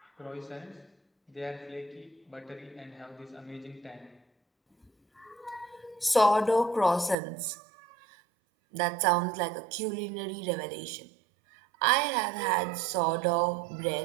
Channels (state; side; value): drops out; left; at 7.2 s